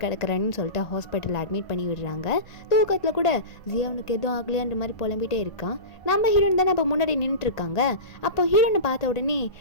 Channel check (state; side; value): late; right; 1.5 ms